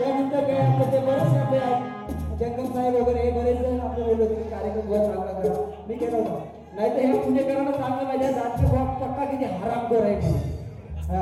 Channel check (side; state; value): both; identical; correlation 1.00